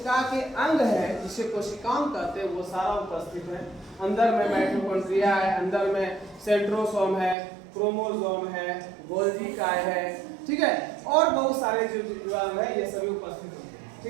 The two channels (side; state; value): left; drops out; at 7.4 s